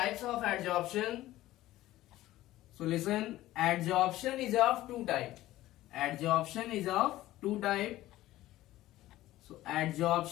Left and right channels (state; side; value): quieter; right; 15.7 dB